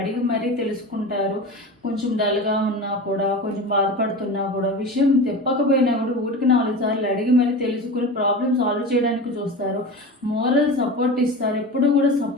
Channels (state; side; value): normal; both; correlation 0.30